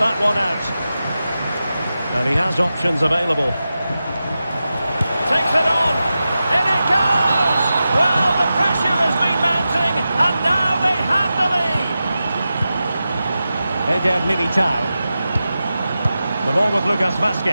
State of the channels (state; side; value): inverted; both; correlation -0.92